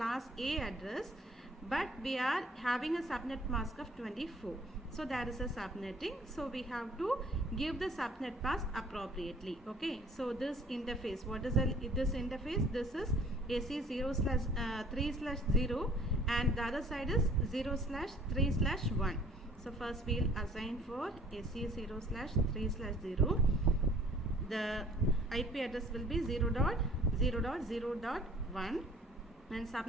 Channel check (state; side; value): normal; both; correlation 0.55